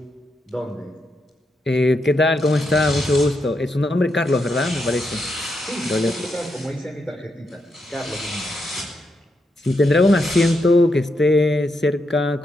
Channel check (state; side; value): normal; both; correlation 0.82